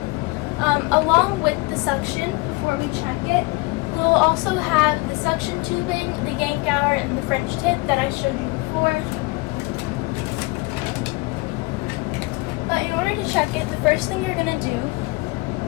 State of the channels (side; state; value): right; quieter; 24.9 dB